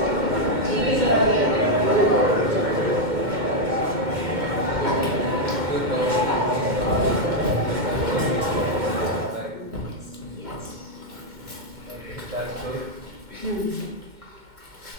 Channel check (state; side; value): late; left; 2.1 ms